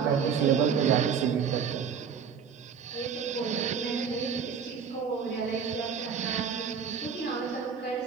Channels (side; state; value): left; quieter; 6.7 dB